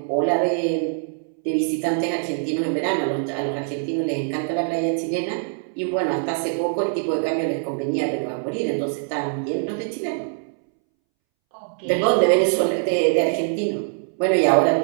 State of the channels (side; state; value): left; silent; 63 dB below the other